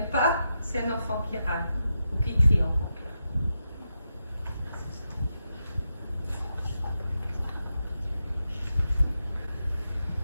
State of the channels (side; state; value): both; inverted; correlation -0.86